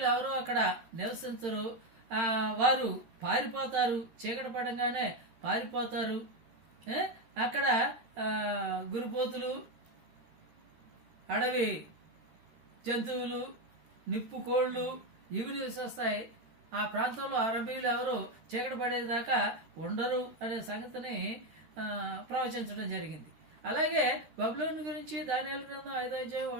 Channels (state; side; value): late; left; 13 ms